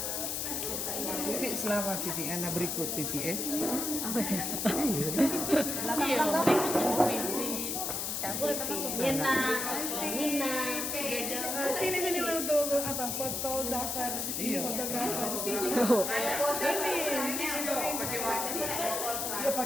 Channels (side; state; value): left; noise; hiss, 2 dB below the sound